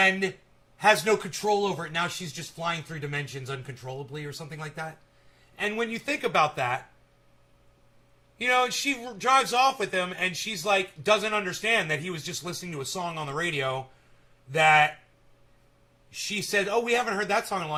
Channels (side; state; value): both; identical; correlation 1.00